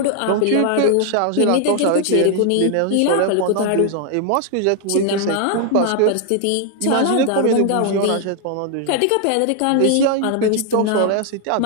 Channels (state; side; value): different; both; correlation 0.00